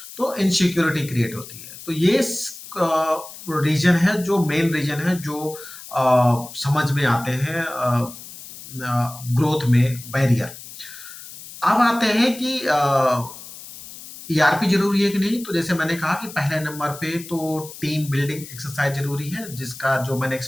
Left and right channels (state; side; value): noise; left; hiss, 15 dB below the sound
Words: तो इनसिक्योरिटी क्रिएट होती है। तो ये रीजन है, जो मेन रीजन है, जो समझ में आते हैं ग्रोथ में बैरियर। अब आते हैं कि ईआरपी जरूरी है कि नहीं। तो जैसे मैंने कहा कि पहले नंबर पे तो टीम बिल्डिंग एक्सरसाइज जरूरी है, जिसका जो मैंने